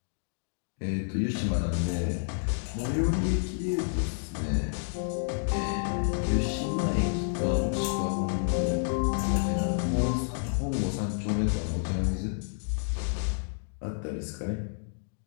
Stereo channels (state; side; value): silent; right; digital silence